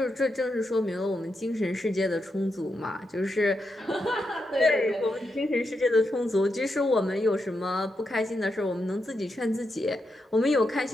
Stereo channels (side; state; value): both; normal; correlation 0.85